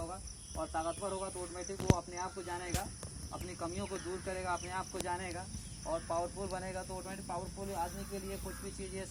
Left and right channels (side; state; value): both; identical; correlation 1.00